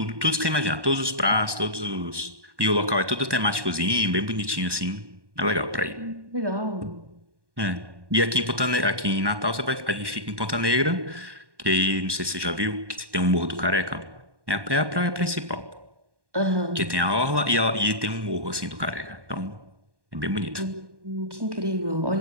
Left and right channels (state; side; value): late; left; 1.2 ms